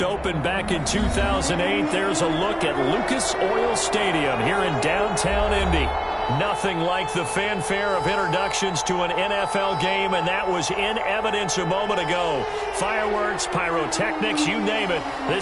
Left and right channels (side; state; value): both; identical; correlation 1.00